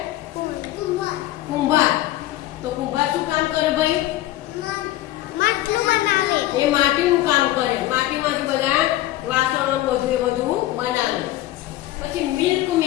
કુંભાર. તો કુંભાર શું કામ કરે ભાઈ? એ માટીનું કામ કરે. માટીમાંથી બધા વાસણો બધું એ બધું બનાવે. પછી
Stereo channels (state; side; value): quieter; right; 15.3 dB